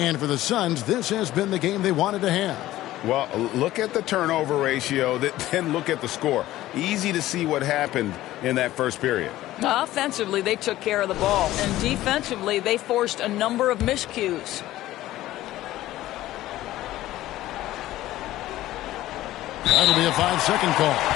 for the Suns, this has been the game they wanted to have. Well, look at the turnover ratio, then look at the score. Easy to see what happened in that first period. Offensively, they took care of the ball, and defensively, they forced a number of miscues. That'll be a 5-second call.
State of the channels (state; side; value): quieter; right; 15.3 dB